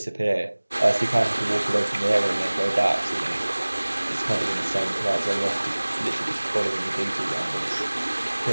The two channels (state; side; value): inverted; both; correlation -1.00